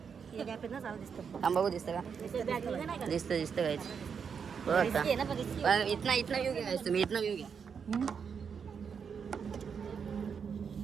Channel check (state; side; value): quieter; left; 6.6 dB